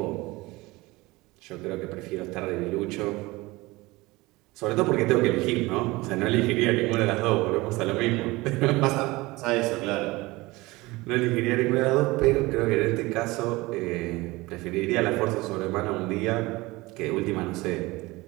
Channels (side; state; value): left; quieter; 21.5 dB